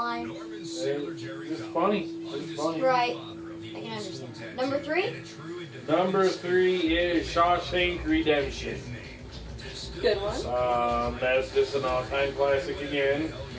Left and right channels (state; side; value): identical; both; correlation 1.00